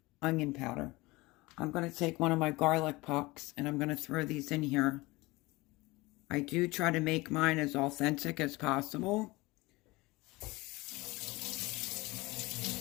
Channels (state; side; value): quieter; right; 21.9 dB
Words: onion powder. I'm going to take one of my garlic pucks and I'm going to throw these in here. I do try to make mine as authentic as possible.